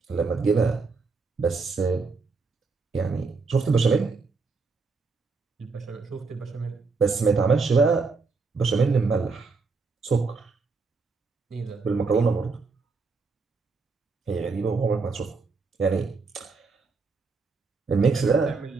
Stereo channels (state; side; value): quieter; left; 4.4 dB